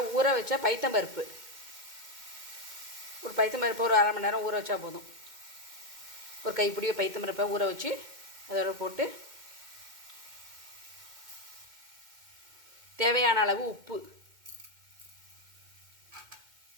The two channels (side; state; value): left; late; 2.1 ms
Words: ஊற வச்ச பைத்தம்பருப்பு, ஒரு பைத்தம்பருப்பு ஒரு அரை மணி நேரம் ஊற வச்சா போதும். ஒரு கைப்பிடிய பைத்தம்பருப்பை ஊற வச்சு அதோட போட்டு தேவையான அளவு உப்பு,